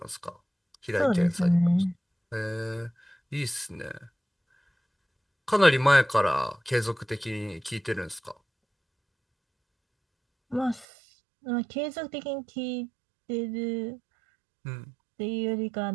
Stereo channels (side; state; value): left; drops out; at 10.9 s